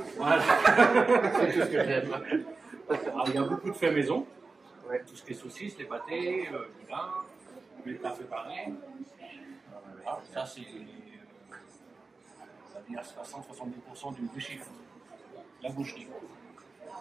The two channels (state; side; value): quieter; left; 4.0 dB